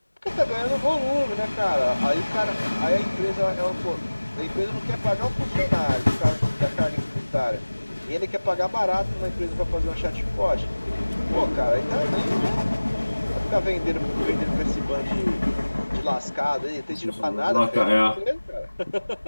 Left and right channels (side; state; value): both; inverted; correlation -1.00